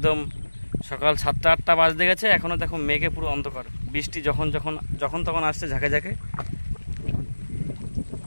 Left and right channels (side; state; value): both; inverted; correlation -1.00